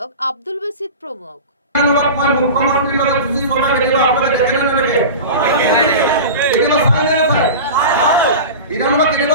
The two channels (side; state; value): both; inverted; correlation -0.30